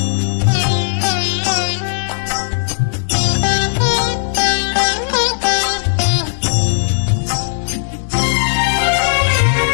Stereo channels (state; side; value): silent; right; digital silence